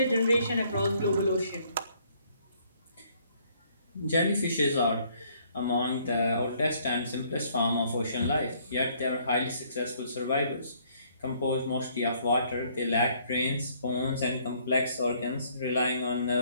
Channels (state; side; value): inverted; both; correlation -0.64